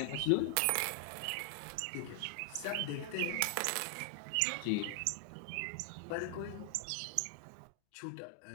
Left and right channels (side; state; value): both; different; correlation 0.00